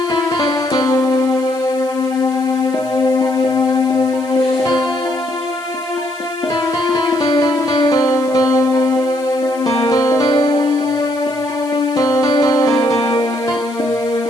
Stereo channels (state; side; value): noise; left; hiss, 23 dB below the sound